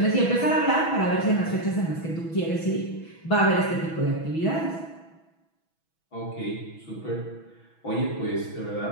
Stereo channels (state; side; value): late; right; 6.1 ms